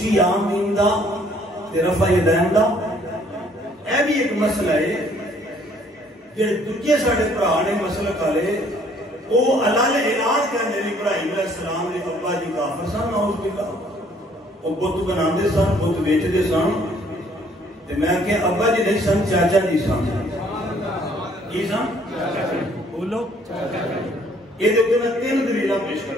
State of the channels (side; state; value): both; normal; correlation 0.61